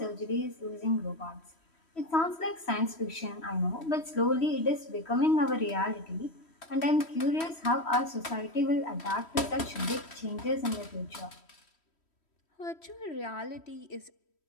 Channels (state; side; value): late; right; 3.1 ms